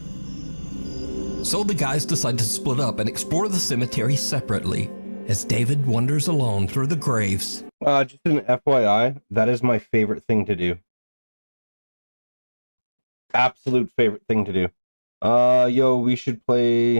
So the guys decide to split up and explore the cemetery separately, as David wanders alone through the graves. Just an FYI, that is my favorite thing to do. Absolute favorite thing to do. Yo, we should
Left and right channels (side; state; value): both; inverted; correlation -1.00